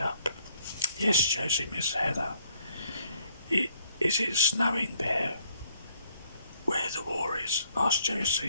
up. Yes, Josie, Miss Heather. Is it snowing there where the war is? Asked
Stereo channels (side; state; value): both; inverted; correlation -0.67